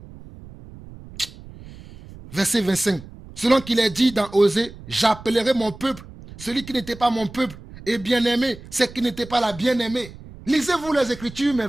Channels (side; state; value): right; noise; rumble, 17 dB below the sound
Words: Verset 25. Selon qu'il est dit dans Osée, j'appellerai mon peuple, celui qui n'était pas mon peuple, et bien-aimé, c'est qui n'était pas la bien-aimée. Lisez-vous les Écritures, mes